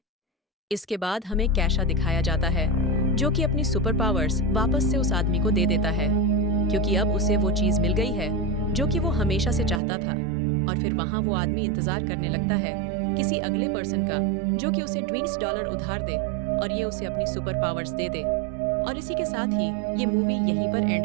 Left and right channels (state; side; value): drops out; left; at 9.8 s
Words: इसके बाद हमें कैशा दिखाया जाता है जो कि अपनी सुपर पावर्स वापस से उस आदमी को दे देता है क्योंकि अब उसे वो चीज मिल गई है जो कि वो हमेशा से चाहता था। और फिर वहाँ वो आदमी इंतजार करने लगता है किसी अगले पर्सन का जो कि उसे $20 उधार दे और ये उसे अपनी सुपर पावर्स दे दे। और इसी के साथ ही ये मूवी यहीं पर एंड